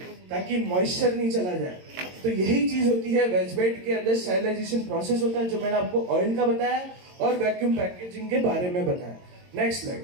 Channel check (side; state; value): left; late; 22 ms